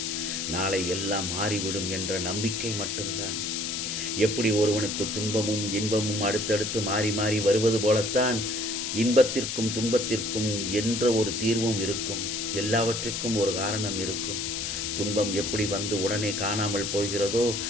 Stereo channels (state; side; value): noise; left; hiss, 3 dB below the sound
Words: நாளை எல்லாம் மாறிவிடும் என்ற நம்பிக்கை மட்டும்தான். எப்படி ஒருவனுக்கு துன்பமும் இன்பமும் அடுத்தடுத்து மாறி மாறி வருவது போலத்தான் இன்பத்திற்கும் துன்பத்திற்கும் என்ற ஒரு தீர்வும் இருக்கும். எல்லாவற்றிற்கும் ஒரு காரணம் இருக்கும். துன்பம் எப்படி வந்து உடனே காணாமல் போகிறதோ,